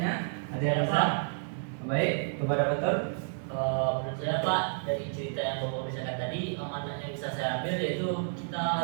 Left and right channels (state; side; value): silent; left; digital silence